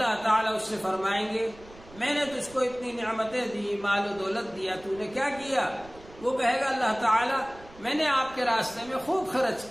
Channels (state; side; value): noise; right; rumble, 21 dB below the sound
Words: تعالیٰ اس سے فرمائیں گے میں نے تجھ کو اتنی نعمتیں دی، مال و دولت دیا، تو نے کیا کیا؟ وہ کہے گا اللہ تعالیٰ میں نے آپ کے راستے میں خوب خرچ